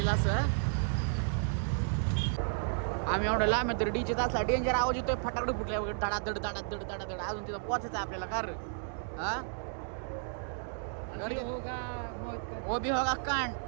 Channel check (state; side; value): silent; left; digital silence